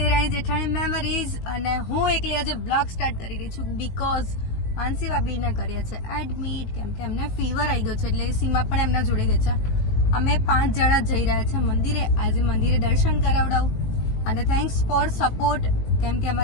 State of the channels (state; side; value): late; right; 18 ms